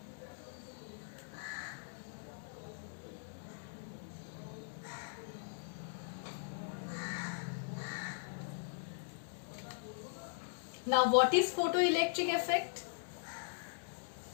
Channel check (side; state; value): right; silent; digital silence